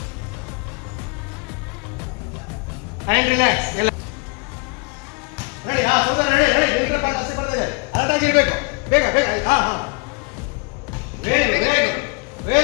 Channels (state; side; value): quieter; right; 31.5 dB